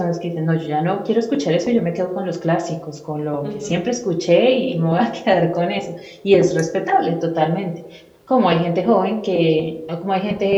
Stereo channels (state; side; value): identical; both; correlation 1.00